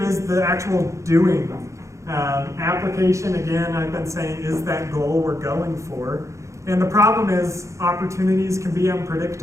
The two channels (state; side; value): late; left; 0.15 ms